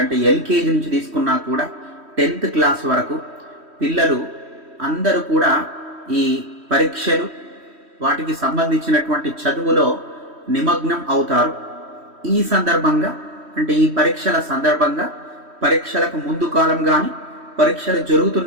అంటే ఎల్కేజీ నుంచి తీసుకున్నా కూడా 10th క్లాస్ వరకు పిల్లలు అందరూ కూడా ఈ పరీక్షలు వాటికి సంబంధించినటువంటి చదువులో నిమగ్నం అవుతారు. ఈ సందర్భంగా అంటే ఈ పరీక్షల సందర్భంగా పరీక్షలకు ముందు కాలం కానీ పరీక్షలు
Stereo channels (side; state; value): left; late; 3.1 ms